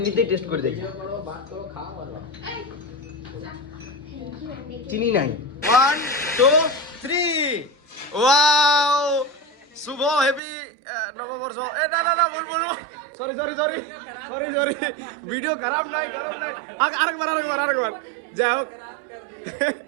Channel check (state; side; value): drops out; left; at 10.4 s